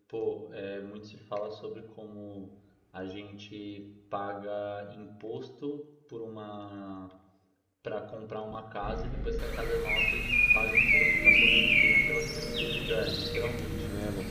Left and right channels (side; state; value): both; identical; correlation 1.00